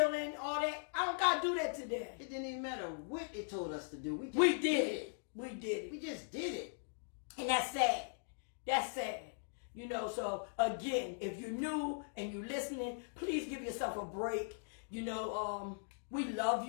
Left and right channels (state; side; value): silent; right; digital silence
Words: all that. I don't got to do that today. It didn't even matter what it told us to do. We did it. We did it. We just did it. And that's sad. That's sad. You know, so again, if you're new and you're listening, please give yourself a break. You know, we love